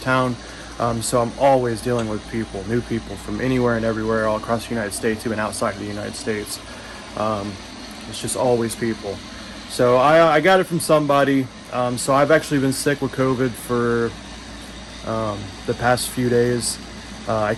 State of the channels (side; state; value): both; identical; correlation 1.00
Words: town, so I'm always dealing with new people from anywhere and everywhere, all across the United States, even outside of the United States. It's just always people. So I got it from somebody. So I've actually been sick with COVID for the past few days. I